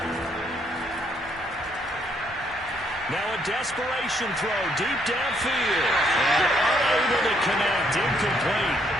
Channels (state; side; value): normal; both; correlation 0.70